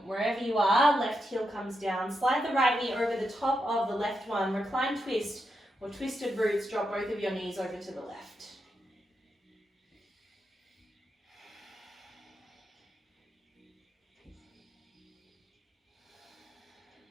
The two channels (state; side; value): normal; both; correlation 0.84